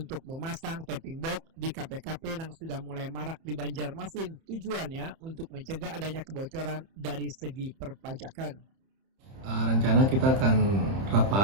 memasang tapping box di KP-KP yang sudah mulai marak di Banjarmasin. Tujuannya untuk mencegah adanya kebocoran dari segi perpajakan. Rencana kita akan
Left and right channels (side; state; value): left; late; 30 ms